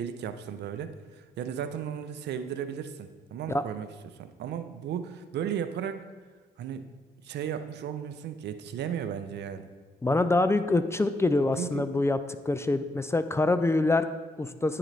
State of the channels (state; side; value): normal; both; correlation 0.74